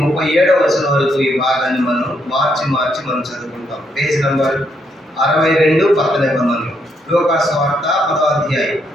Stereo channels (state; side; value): normal; both; correlation 0.75